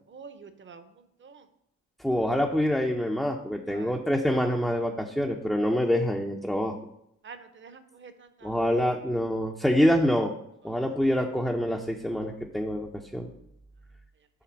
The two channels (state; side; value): normal; both; correlation 0.89